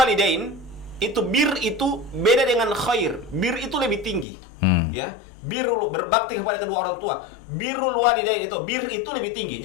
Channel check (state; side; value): drops out; right; at 4.2 s